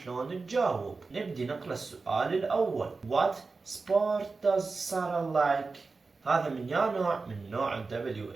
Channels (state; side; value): quieter; left; 4.1 dB